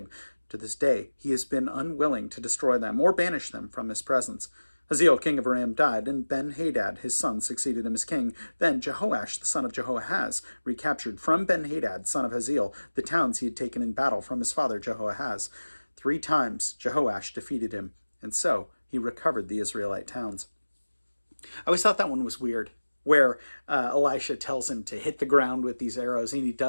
To this day, he has been unwilling to destroy them or banish them from his presence. Hazael, king of Aram, died, and Ben-Hadad, his son, succeeded him as king. Then Jehoash, the son of Jehoahaz, recaptured from Ben-Hadad, son of Hazael, the towns he had taken in battle from his father Jehoahaz. 3 times Jehoash defeated him, and so he recovered the Israelite towns. I always thought that one was weird, where Elisha tells him to hit the ground with these arrows, and he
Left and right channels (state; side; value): inverted; both; correlation -1.00